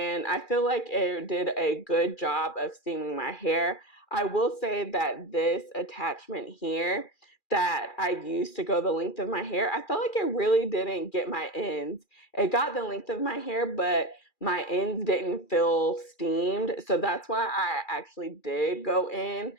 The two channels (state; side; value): late; right; 2.4 ms